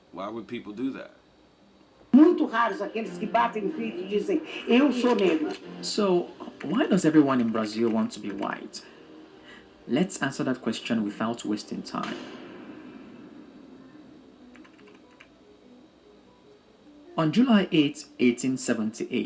Why would people do that? Muito raros aqueles que batem no peito e dizem, eu sou negro. So, why does everyone in Brazil want to be white? Let's answer that question without wasting time. On July 8,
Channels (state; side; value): identical; both; correlation 1.00